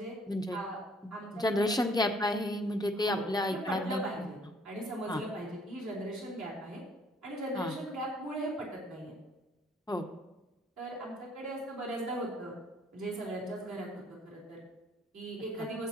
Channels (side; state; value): both; normal; correlation 0.61